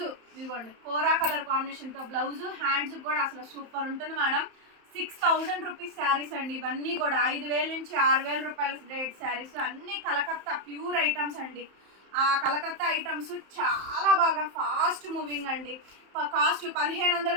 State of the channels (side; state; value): left; late; 31 ms